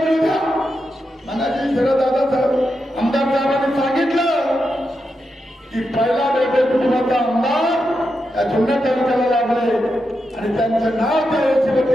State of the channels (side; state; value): both; normal; correlation 0.86